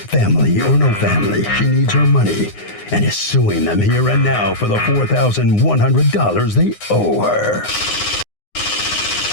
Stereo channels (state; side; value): late; right; 9.7 ms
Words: or no family, she needs her money and is suing them here and now for the $4,100 they owe her.